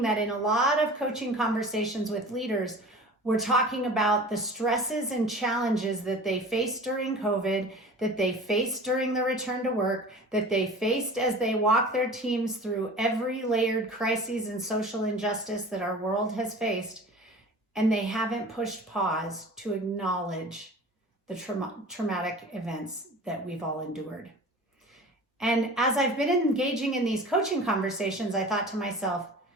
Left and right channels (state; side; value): normal; both; correlation 0.39